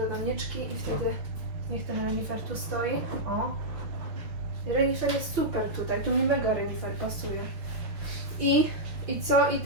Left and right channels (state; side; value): late; left; 6.0 ms